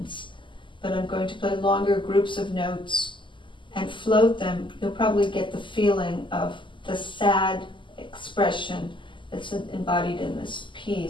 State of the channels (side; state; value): right; late; 0.24 ms